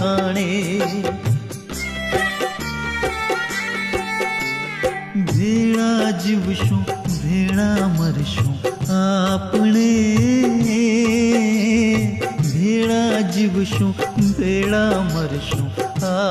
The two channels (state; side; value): identical; both; correlation 1.00